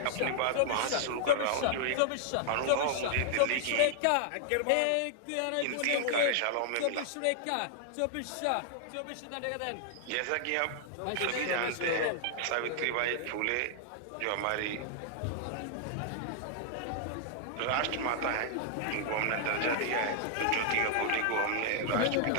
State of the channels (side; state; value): both; different; correlation -0.01